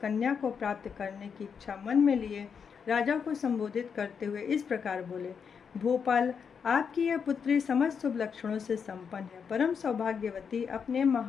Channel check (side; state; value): right; quieter; 6.6 dB